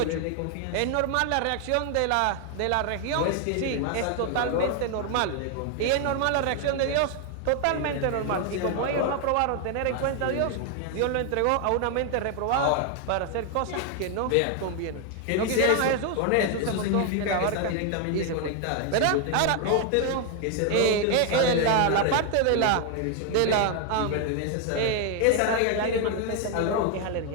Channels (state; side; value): different; both; correlation 0.00